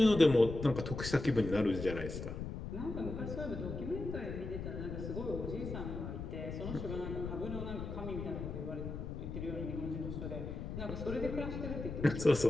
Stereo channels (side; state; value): left; noise; rumble, 6 dB below the sound